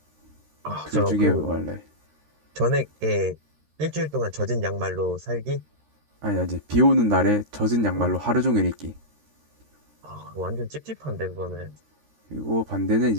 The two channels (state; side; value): late; left; 13 ms